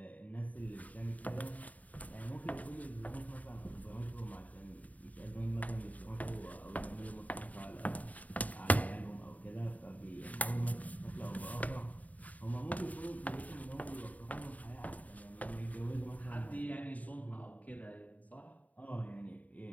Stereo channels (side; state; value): right; late; 0.073 ms